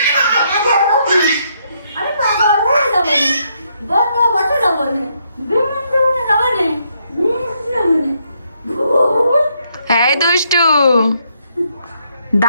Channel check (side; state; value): both; inverted; correlation -0.75